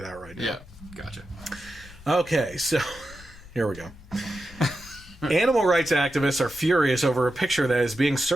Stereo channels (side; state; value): left; noise; rumble, 19 dB below the sound